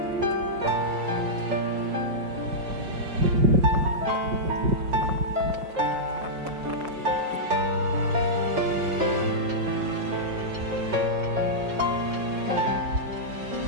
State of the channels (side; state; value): left; late; 5.4 ms